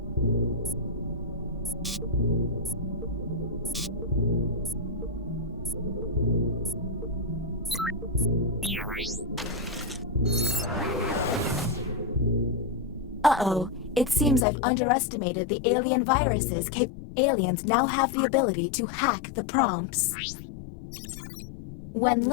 Uh-oh. It seems I've underestimated the alien viruses. Aliens now have the ability to hack the prompts. When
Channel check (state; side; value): drops out; right; at 14.5 s